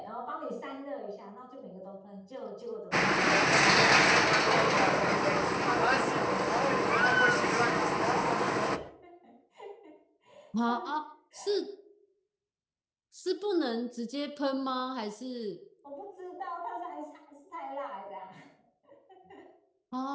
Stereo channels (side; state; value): both; identical; correlation 1.00